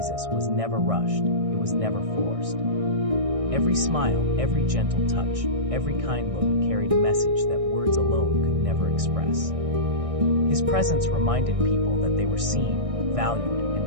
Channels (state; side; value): late; left; 1.6 ms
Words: was never rushed, it was never forced. Every smile, every gentle touch, every kind look carried a message that words alone could never express. His presence reminded people that they were seen, valued,